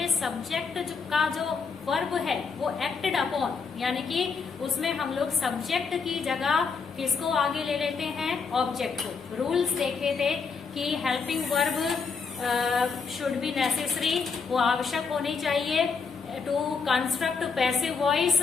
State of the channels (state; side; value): quieter; right; 5.2 dB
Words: सब्जेक्ट का जो वर्ब है वो एक्टेड अपॉन, यानी कि उसमें हम लोग सब्जेक्ट की जगह किसको आगे ले लेते हैं, ऑब्जेक्ट को। रूल्स देखे थे कि helping verb should be necessary, वो आवश्यक होनी चाहिए टू कंस्ट्रक्ट पैसिव वॉइस,